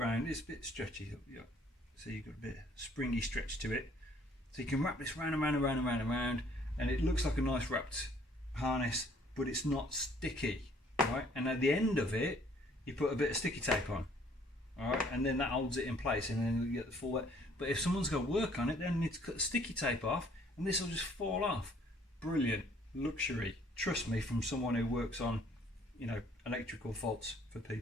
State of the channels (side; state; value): both; normal; correlation 0.60